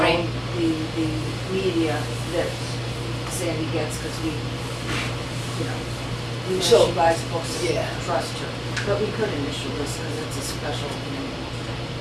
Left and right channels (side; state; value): both; identical; correlation 1.00